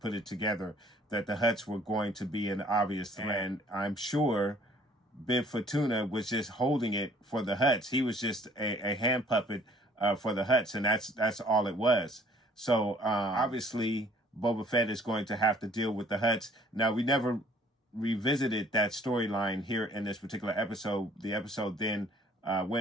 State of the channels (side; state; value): both; normal; correlation 0.57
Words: it together that the Hutts were going to be an obvious threat. And I'm sure Bib Fortuna was just holding it for the Hutts. He was just a hand puppet for the Hutts, and that's all it was. So obviously Boba Fett is going to have to deal with the Hutts. Now, we never revisited that storyline here in this particular episode. The episode then